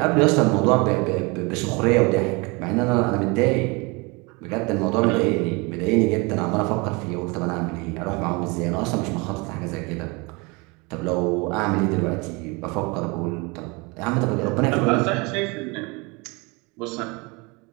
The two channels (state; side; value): quieter; left; 27.7 dB